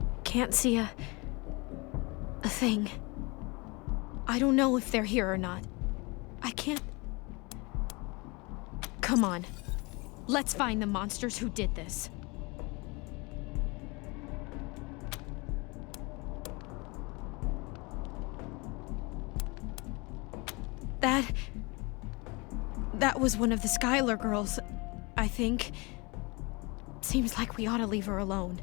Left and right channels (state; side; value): quieter; right; 27.1 dB